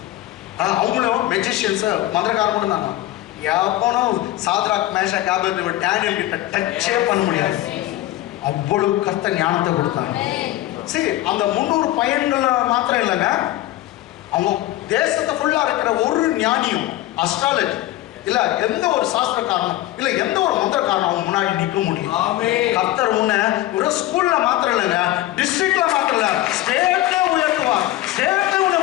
அவங்களும் magicians மந்திரக்காரங்களும் தான். எவனும் Shadrach Meshach Abednego Daniel கிட்ட டச்சே பண்ண முடியாது. அவ்வளவு கர்த்தர் ஞானத்தை கொடுத்தாங்க. சரி, அந்த 300 பையன்கள் மாத்திரம் இல்லைங்க, அவங்க தேசத்தை ஃபுல்லா இருக்கிற ஒரு ஞானியும் அஸ்ட்ராலஜி இல்ல எந்த ஒரு சாஸ்திரக்காரனும் இல்ல எந்த ஒரு மந்திரக்காரனும் அவங்க முன்னாடி நிற்க முடியும். கர்த்தர் உன்னை ஒரு ஸ்கூல்ல மாத்திரம் இல்லைங்க, டிஸ்ட்ரிக்ட்ல மாத்திரம் இல்ல, ஸ்டேட்ல உயர்த்துவார், ஸ்டேட்ல உன்னை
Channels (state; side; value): quieter; right; 15.6 dB